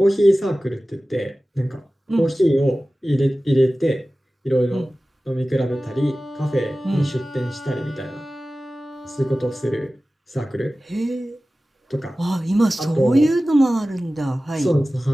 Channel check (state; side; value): normal; both; correlation 0.96